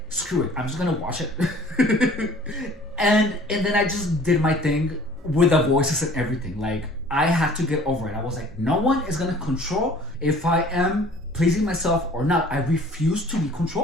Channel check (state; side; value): normal; both; correlation 0.50